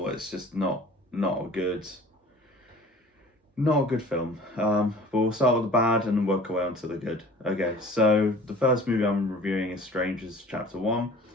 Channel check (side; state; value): both; normal; correlation 0.46